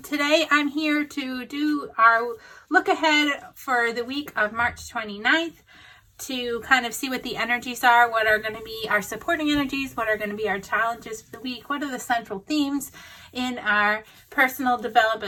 Today I'm here to do our look ahead for the week of March 29th to kind of see what the energies are, what are going to be our supporting energies, what are going to be our challenges for the week, what are the central themes in our personal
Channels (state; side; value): identical; both; correlation 1.00